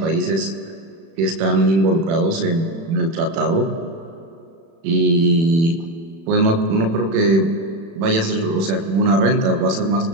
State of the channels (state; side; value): late; left; 36 ms